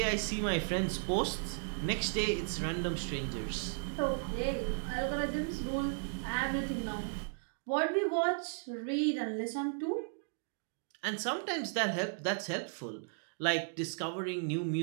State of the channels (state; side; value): silent; left; digital silence